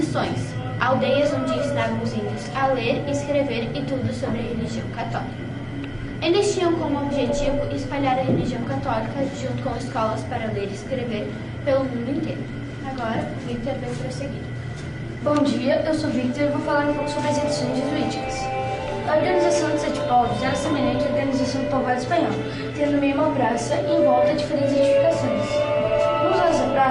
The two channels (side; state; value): both; identical; correlation 1.00